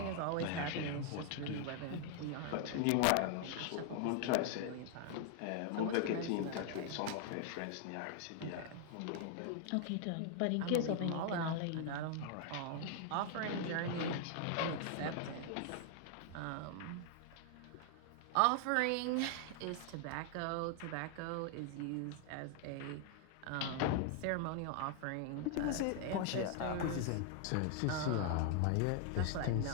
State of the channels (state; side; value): different; both; correlation 0.00